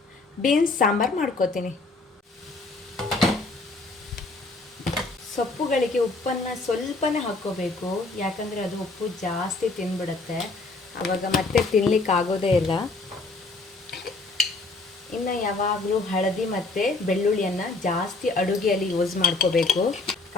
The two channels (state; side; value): quieter; right; 3.4 dB